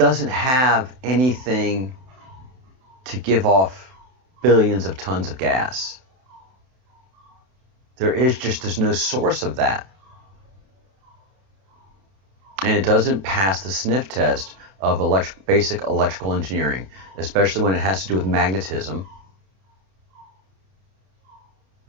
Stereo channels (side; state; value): left; late; 31 ms